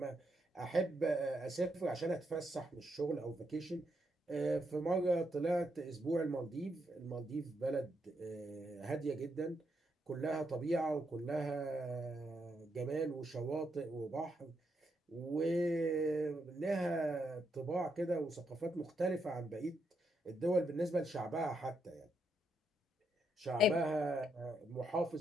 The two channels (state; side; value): normal; both; correlation 0.79